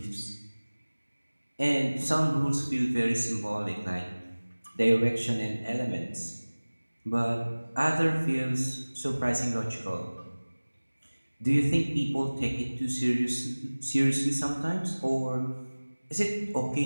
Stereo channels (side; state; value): both; inverted; correlation -1.00